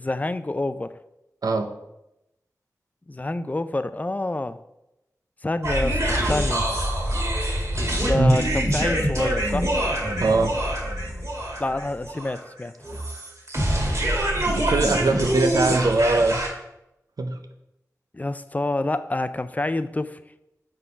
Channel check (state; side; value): normal; both; correlation 0.79